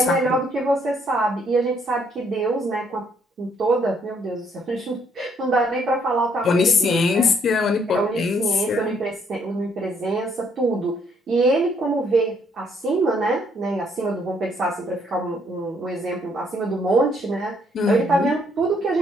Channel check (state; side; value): normal; both; correlation 0.68